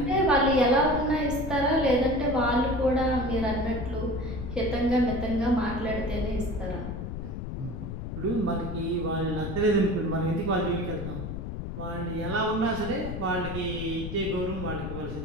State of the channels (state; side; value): noise; left; rumble, 6 dB below the sound